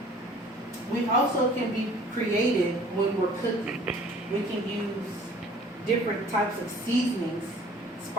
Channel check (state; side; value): normal; both; correlation 0.52